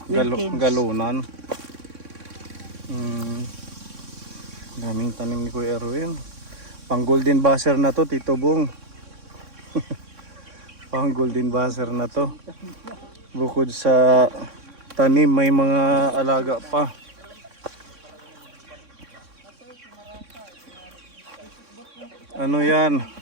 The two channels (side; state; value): left; late; 3.6 ms